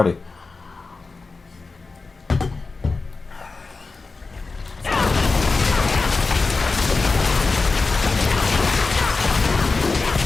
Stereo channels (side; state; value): right; quieter; 4.0 dB